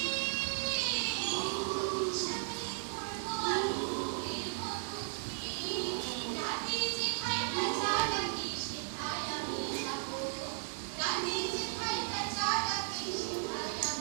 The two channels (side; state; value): left; silent; digital silence